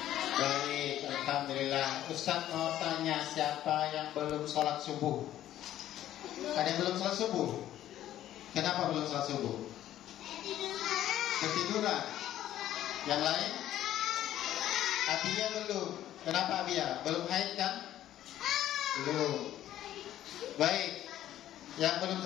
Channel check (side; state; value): right; quieter; 12.6 dB